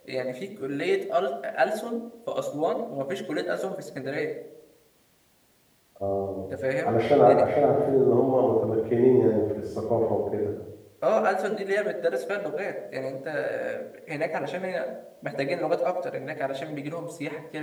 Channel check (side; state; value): both; identical; correlation 1.00